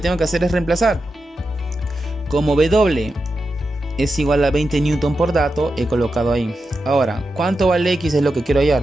tengo que hacer es reemplazar. Como W es igual a 20 newton por dato, he colocado ahí. Ahora, ¿cuánto vale X? Es lo que quiero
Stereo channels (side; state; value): both; normal; correlation 0.89